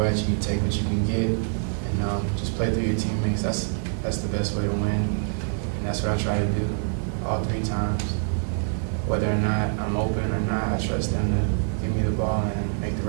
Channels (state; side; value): silent; left; 61 dB below the other